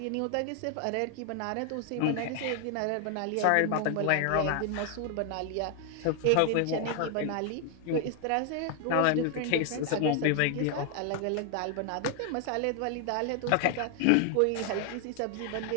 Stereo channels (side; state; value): both; different; correlation 0.00